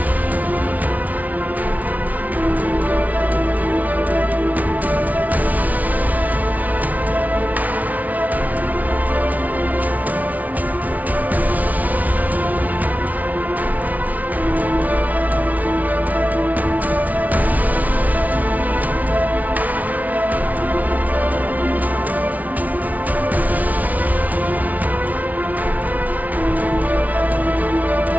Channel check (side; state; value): left; late; 0.073 ms